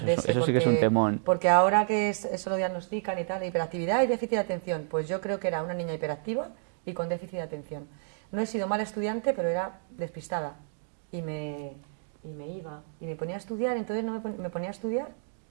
De ese, eso sí que es un temón. porque ahora que eso lo diagnostican y tal, hiperactividad y déficit de atención, pues yo creo que era una niña hiperactiva y con déficit de atención. No he sido mala estudiante, pero era despistada y me iba y me ponía a estudiar, entonces me ponía a estudiar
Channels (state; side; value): silent; left; digital silence